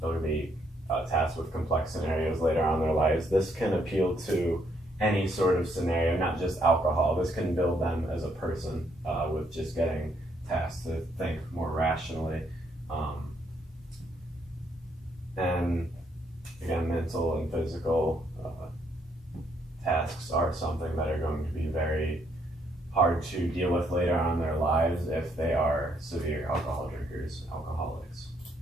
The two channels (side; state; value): both; normal; correlation 0.72